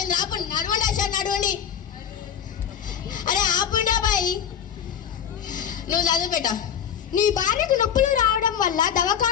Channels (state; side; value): quieter; right; 8.5 dB